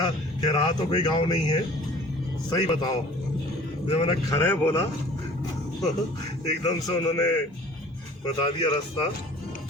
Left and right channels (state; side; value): normal; both; correlation 0.48